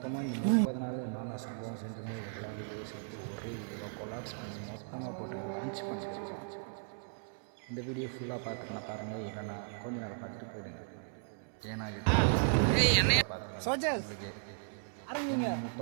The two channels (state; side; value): silent; left; 54 dB below the other